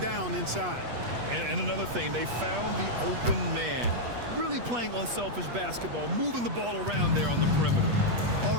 down inside. And another thing, they found the open man. Really playing unselfish basketball, moving the ball around there on the perimeter.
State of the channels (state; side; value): late; left; 8.3 ms